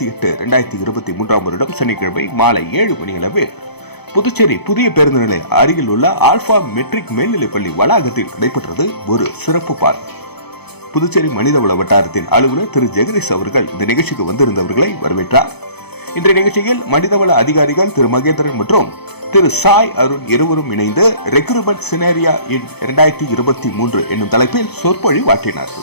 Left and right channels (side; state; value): right; late; 0.98 ms